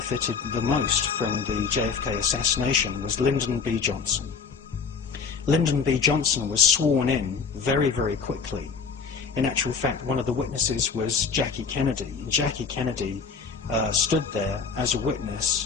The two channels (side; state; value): right; quieter; 5.5 dB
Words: the most from the JFK assassination was Lyndon B. Johnson. Lyndon B. Johnson was sworn in very, very quickly. In actual fact, one of the witnesses was Jackie Kennedy. And Jackie Kennedy stood there as a witness,